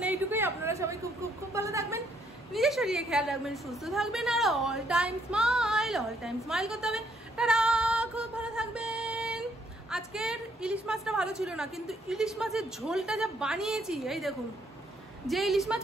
এইটুকুই। আপনারা সবাই খুব খুব খুব ভালো থাকবেন, নিজের শরীরে খেয়াল রাখবেন, সুস্থ থাকবেন, আর অল টাইম স্মাইল করতে হবে। তারা খুব ভালো থাকবেন। আজকের ইলিশ মাছটা ভালো ছিল না, কিন্তু ইলিশ মাছের ঝোলটা যা বানিয়েছি, এই দেখুন, যে ইলিশ মাছ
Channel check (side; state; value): both; normal; correlation 0.70